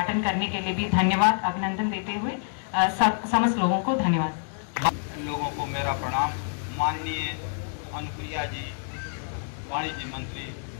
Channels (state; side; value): silent; right; 60 dB below the other